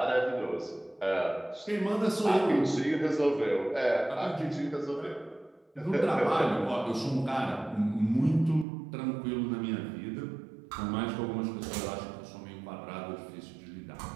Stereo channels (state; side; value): drops out; left; at 8.7 s